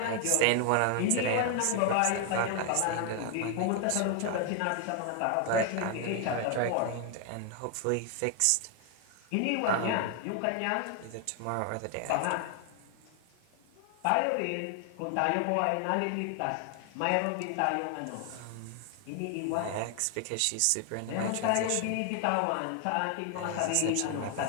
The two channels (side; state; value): both; different; correlation 0.00